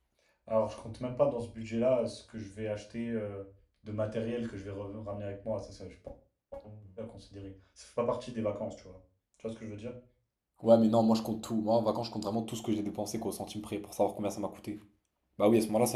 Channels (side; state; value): both; identical; correlation 1.00